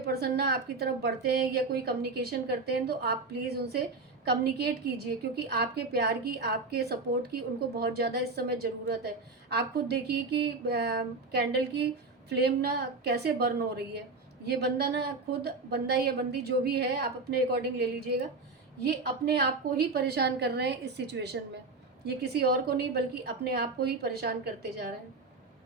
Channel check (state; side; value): quieter; left; 3.8 dB